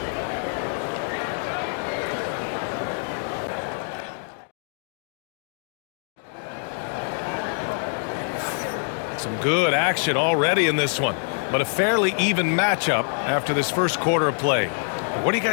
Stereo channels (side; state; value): right; silent; 55 dB below the other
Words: Some good action already in this one, but a fairly even matchup after this first quarter of play. What do you